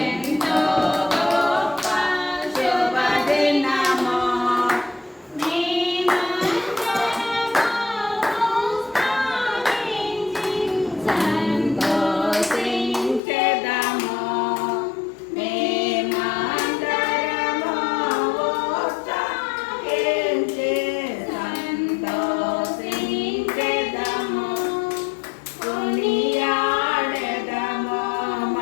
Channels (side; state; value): right; drops out; at 13.2 s